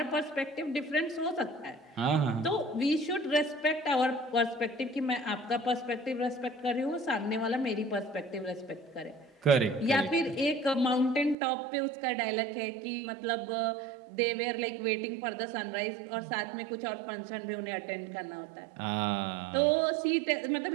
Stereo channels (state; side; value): drops out; left; at 11.4 s